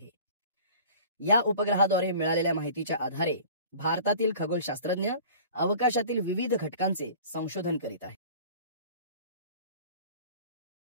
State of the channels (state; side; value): inverted; both; correlation -0.43